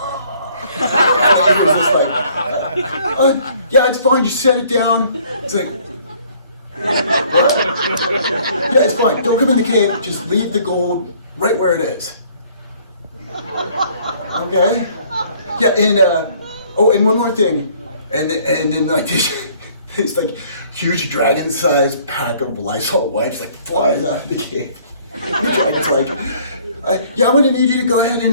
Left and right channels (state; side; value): inverted; both; correlation -0.59